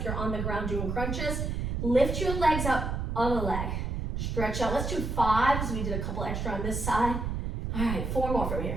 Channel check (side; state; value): right; noise; rumble, 2 dB below the sound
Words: you're on the ground doing crunches. Lift your legs up, other leg. Stretch out. Let's do 5, so we did a couple extra on this side. All right, 4 more from